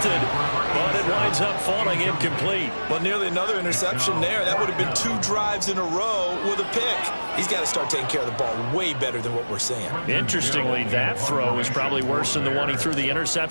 but it winds up falling incomplete. Well, nearly another interception there. That would have been 2 drives in a row with a pick. He's got to start taking care of the ball way better than what we're seeing. Interestingly, that throw is probably worse than the one he threw the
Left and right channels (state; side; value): inverted; both; correlation -1.00